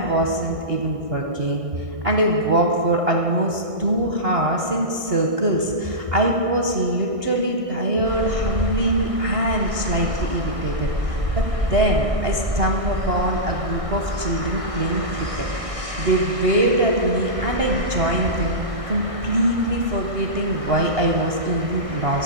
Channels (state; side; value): late; left; 1.6 ms